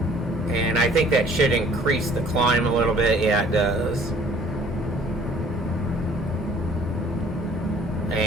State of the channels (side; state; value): both; normal; correlation 0.55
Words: And I think that should increase the climb a little bit. Yeah, it does.